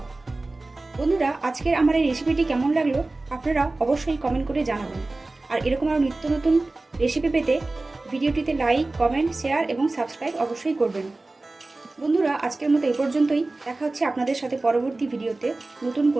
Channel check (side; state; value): left; quieter; 3.1 dB